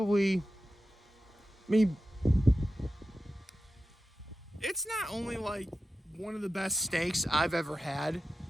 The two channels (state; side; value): normal; both; correlation 0.93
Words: I mean, it's not only like one of the best steaks I've ever had,